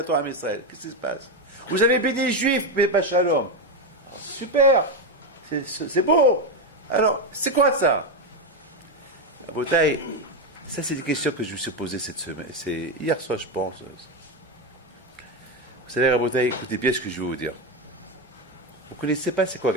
Torah à Israël. Qu'est-ce qui se passe? Vous avez béni les juifs, mais pas shalom. Super, c'est beau. Alors, c'est quoi ça? Rabotai, ça c'est des questions que je me suis posées cette semaine. C'est hier soir, je pense. Vous savez, Rabotai, écoutez bien ce que je vais vous dire. Vous ne connaissez pas c'est quoi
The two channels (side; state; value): both; normal; correlation 0.10